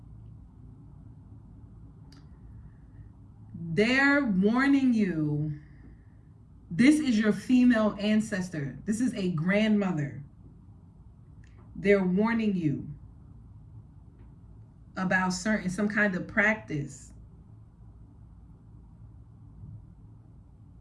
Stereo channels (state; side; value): identical; both; correlation 1.00